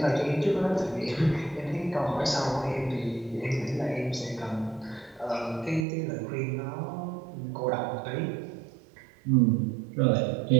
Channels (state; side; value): drops out; left; at 5.9 s